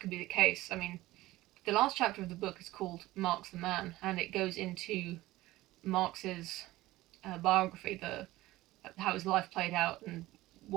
be the case. I mean, the last chapter of the book is called Marx the Man, and it goes into Marx's biography, how his life played out and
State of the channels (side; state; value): left; quieter; 17.6 dB